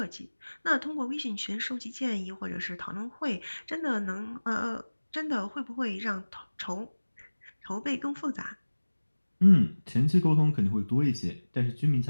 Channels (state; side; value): inverted; both; correlation -1.00